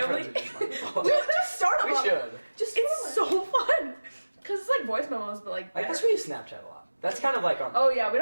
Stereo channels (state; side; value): inverted; both; correlation -1.00